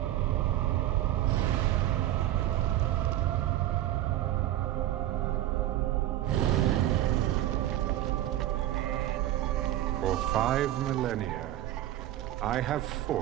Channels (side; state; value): left; quieter; 13.9 dB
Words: For 5 millennia, I have